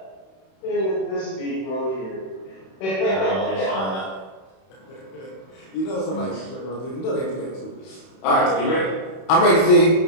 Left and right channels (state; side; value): late; right; 31 ms